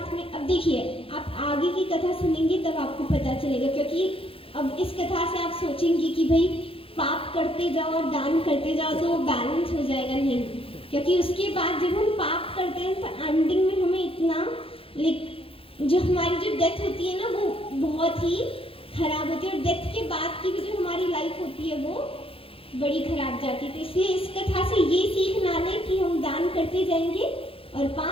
में। अब देखिए, आप आगे की कथा सुनेंगे तब आपको पता चलेगा, क्योंकि अब इस कथा से आप सोचेंगे कि भाई पाप करते जाओ और दान करते जाओ तो बैलेंस हो जाएगा। नहीं, क्योंकि उसके बाद जब हम पाप करते हैं तो एंडिंग में हमें इतना जो हमारी जो डेथ होती है ना वो बहुत ही खराब होती है, और डेथ के बाद की भी जो हमारी लाइफ होती है वो बड़ी खराब जाती है। तो इसलिए इस कथा से ये सीख ना लें कि हम दान करते जाएंगे और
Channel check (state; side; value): late; right; 0.27 ms